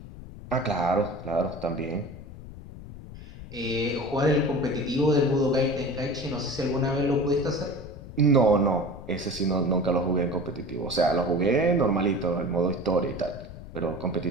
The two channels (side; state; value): left; noise; rumble, 14 dB below the sound